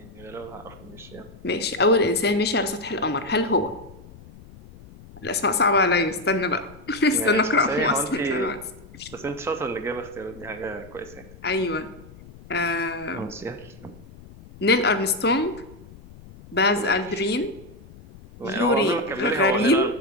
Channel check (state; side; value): noise; left; rumble, 20 dB below the sound